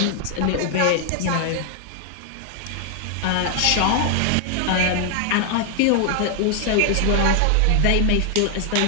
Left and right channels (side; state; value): both; different; correlation 0.00